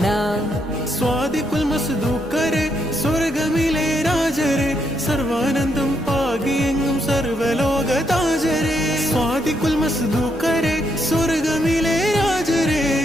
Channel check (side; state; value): both; normal; correlation 0.77